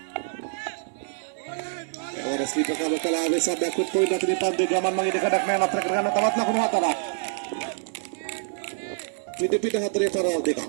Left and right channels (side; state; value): left; silent; digital silence